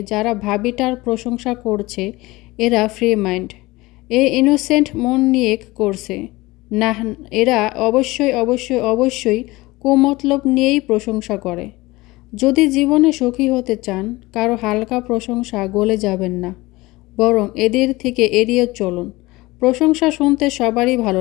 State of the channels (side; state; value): right; quieter; 20.8 dB